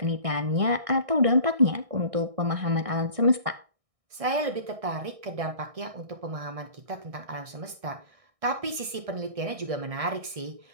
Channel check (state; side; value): late; left; 1.6 ms